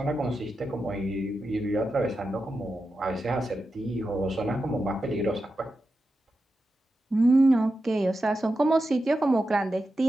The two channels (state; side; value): normal; both; correlation 0.90